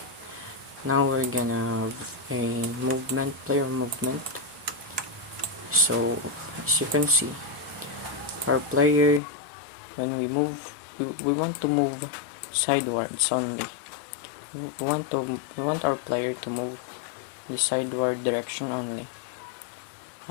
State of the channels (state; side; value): drops out; right; at 9.2 s